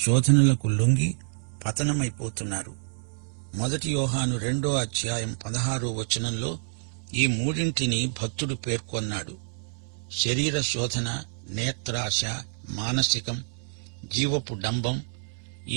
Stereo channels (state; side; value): silent; left; digital silence